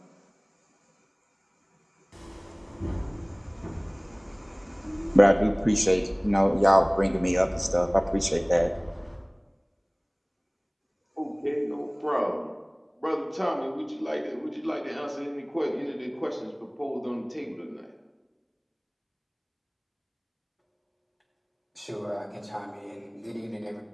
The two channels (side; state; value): both; identical; correlation 1.00